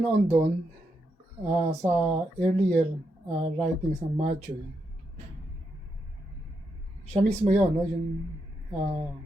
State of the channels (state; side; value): normal; both; correlation 0.82